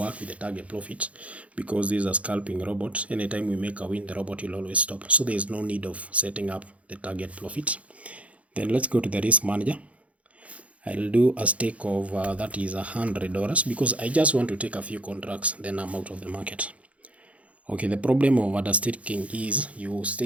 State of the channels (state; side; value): late; left; 0.065 ms